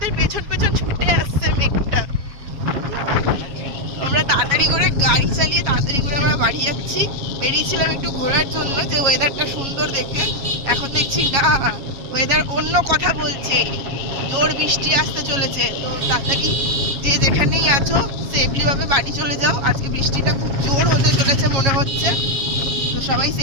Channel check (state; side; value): late; left; 7.2 ms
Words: পেছন পেছন ছুটে আসছে মেঘটা। আমরা তাড়াতাড়ি করে গাড়ি চালিয়ে তাড়াতাড়ি করে আমরা বাড়ি যাচ্ছি। বেরিয়েছিলাম একটু ঘোরার জন্য, যে ওয়েদারটা সুন্দর দেখে। এখন দেখছি না, ওয়েদার অন্য কথা বলছে, জোর বৃষ্টি আসতে চলেছে। তো তাড়াতাড়ি যে যেখানেই আছো সেফলি ভাবে বাড়ি চলে যাও। আজকে বৃষ্টিটা খুব জোর হতে চলেছে মনে হচ্ছে। তো সবাই